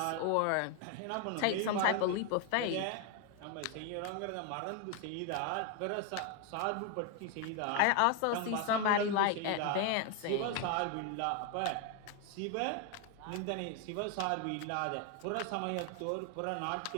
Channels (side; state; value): both; different; correlation 0.01